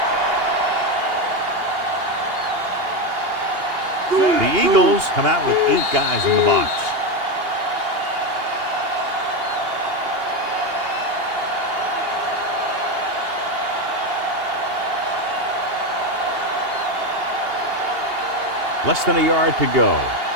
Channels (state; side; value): late; left; 2.8 ms